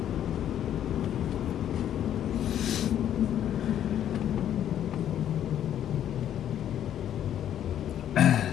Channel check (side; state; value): right; quieter; 10.5 dB